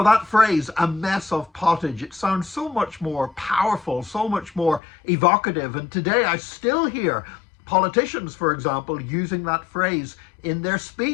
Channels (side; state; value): right; drops out; at 4.8 s